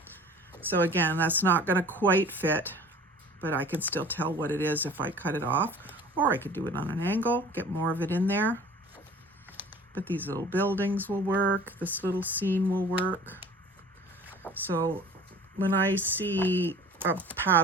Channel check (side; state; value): both; normal; correlation 0.45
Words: So again, that's not going to quite fit, but I can still tell what it is if I cut it off, or I could do it on an angle, get more of it in there. But these little buildings will work. This little scene will work. So when I see a